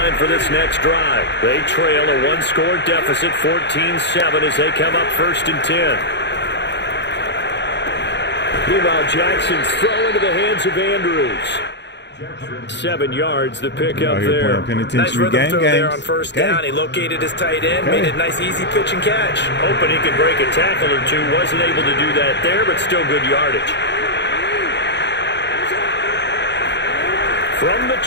for this next drive. They trail a one-score deficit, 14-7, as they come up 1st and 10. Meanwhile, Jackson's throw into the hands of Andrews. 7 yards, the pickup there. Nice rhythm throw there on 1st down. He located his tight end, made it a nice, easy pitch and catch. Hoping he could break a tackle or two. Wasn't able to do that there, but still good yardage. From the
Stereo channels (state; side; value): late; right; 0.51 ms